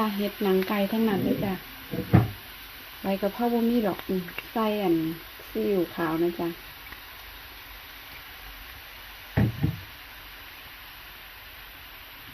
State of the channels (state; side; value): identical; both; correlation 1.00